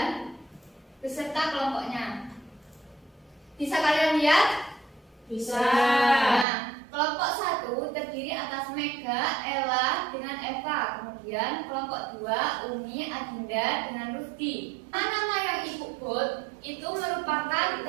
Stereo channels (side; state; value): left; drops out; at 6.5 s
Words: beserta kelompoknya. Bisa kalian lihat? Bisa. Nah, kelompok 1 terdiri atas Mega, Ella dengan Eva. Kemudian kelompok 2 Umi, Adinda dengan Rufdi. Nama yang Ibu bold itu merupakan